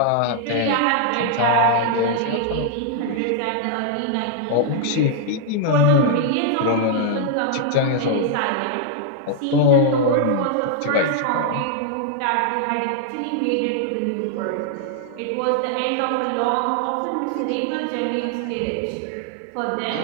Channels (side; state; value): both; different; correlation -0.01